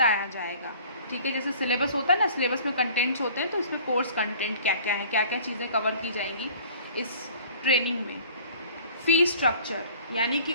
जाएगा, ठीक है। जैसे सिलेबस होता है ना, सिलेबस में कंटेंट्स होते हैं, तो इसमें कोर्स कंटेंट क्या क्या है, क्या क्या चीज़ें कवर की जाएंगी इस ट्रेनिंग में। फी स्ट्रक्चर यानी कि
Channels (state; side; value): inverted; both; correlation -0.48